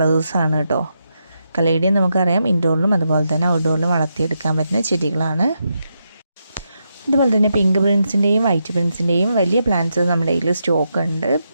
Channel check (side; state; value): both; inverted; correlation -0.84